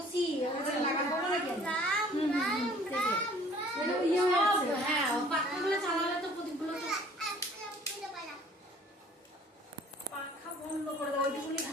লাগাবো না কেন? হ্যাঁ পাখাগুলো চালালে তো প্রদীপগুলো পাখা বন্ধ করে দাও, ওইটুকুনি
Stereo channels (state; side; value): normal; both; correlation 0.54